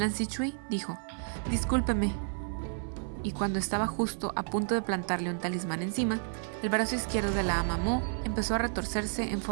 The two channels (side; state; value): left; silent; 57 dB below the other